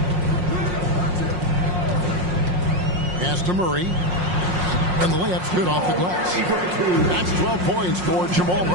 Pass to Murray. And the layup's good off the glass. That's 12 points for Jamal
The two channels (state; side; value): late; left; 5.6 ms